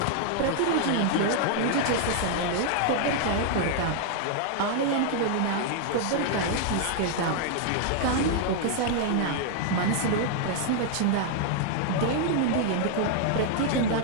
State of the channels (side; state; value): both; different; correlation 0.00